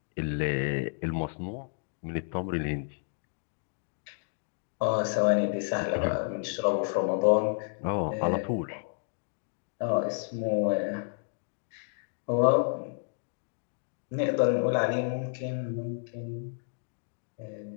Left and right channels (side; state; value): right; silent; digital silence